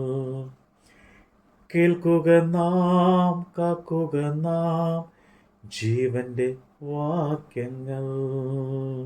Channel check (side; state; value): both; identical; correlation 1.00